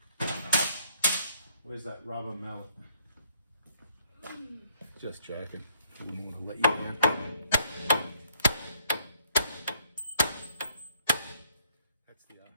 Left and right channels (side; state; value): both; inverted; correlation -0.66